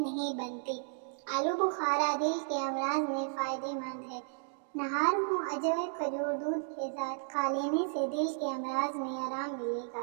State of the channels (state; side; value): silent; left; digital silence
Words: بنتی۔ آلو بخارا دل کے امراض میں فائدہ مند ہے۔ نہار منہ اجوے کھجور دودھ کے ساتھ کھا لینے سے دل کے امراض میں آرام ملے گا۔